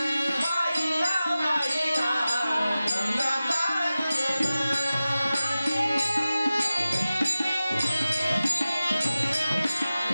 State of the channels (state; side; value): inverted; both; correlation -0.95